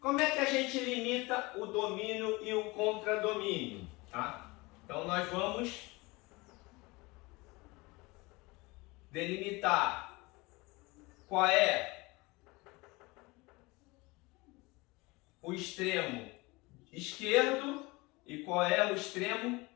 é que a gente limita o domínio e o contradomínio? Tá? Então nós vamos delimitar qual é o extremo esquerdo e qual é o extremo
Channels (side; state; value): right; quieter; 23.7 dB